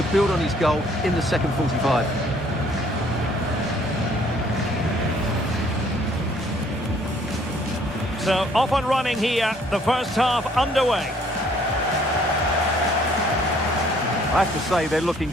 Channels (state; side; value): normal; both; correlation 0.61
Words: build on his goal in the second 45. So, off and running here, the first half underway. I have to say, they're looking